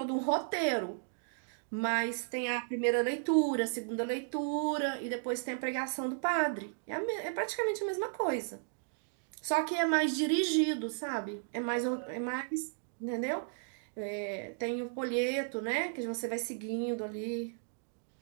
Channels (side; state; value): left; silent; digital silence